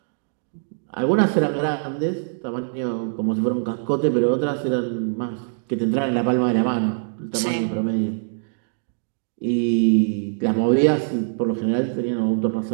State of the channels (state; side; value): silent; left; digital silence